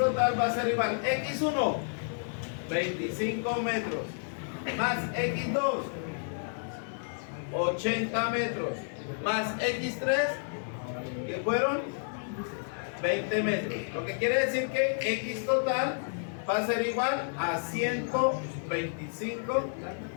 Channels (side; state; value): right; silent; digital silence